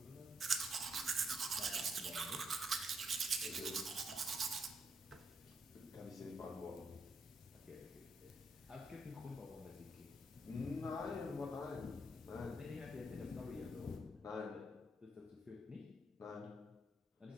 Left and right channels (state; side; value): normal; both; correlation 0.76